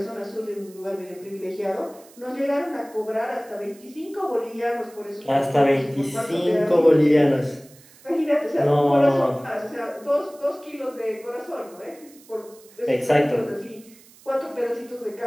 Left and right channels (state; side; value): noise; right; hiss, 25 dB below the sound